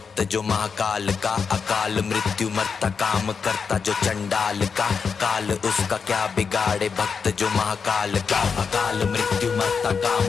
जो महाकाल का। अकाल मृत्यु मरता काम करता जो चंडाल का, काल उसका क्या बिगाड़े भक्त जो महाकाल का। अकाल मृत्यु मरता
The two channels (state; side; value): quieter; right; 5.8 dB